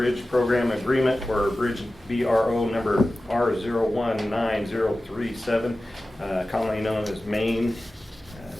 program agreement for bridge BRO number R019037, commonly known as Main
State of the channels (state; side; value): normal; both; correlation 0.95